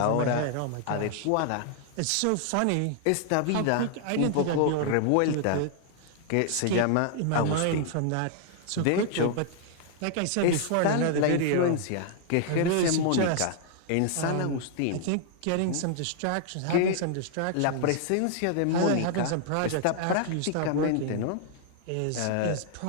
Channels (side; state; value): both; different; correlation -0.01